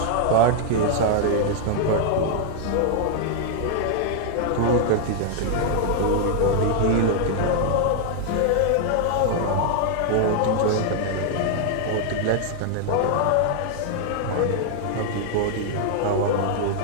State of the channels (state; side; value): different; both; correlation 0.00